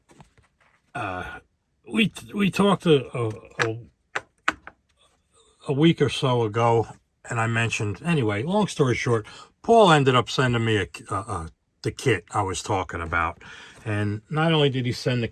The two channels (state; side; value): identical; both; correlation 1.00